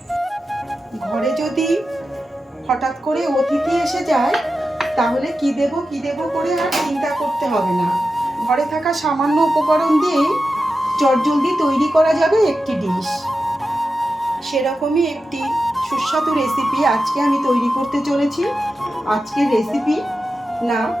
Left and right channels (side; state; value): both; normal; correlation 0.91